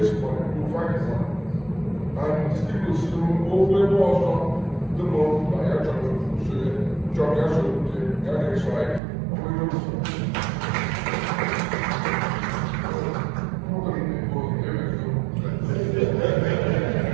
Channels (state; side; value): drops out; left; at 9.0 s